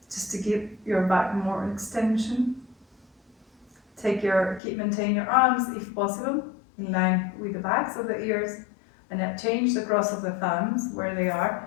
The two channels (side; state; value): right; drops out; at 4.6 s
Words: just to give your back more extension. Maintain your arms, if possible, in line with the backs of the ears, and now change the cross of the thumbs where they are